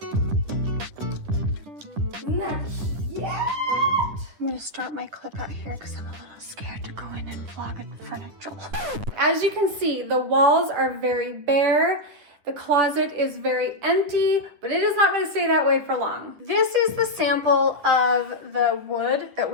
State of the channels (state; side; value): late; left; 9.7 ms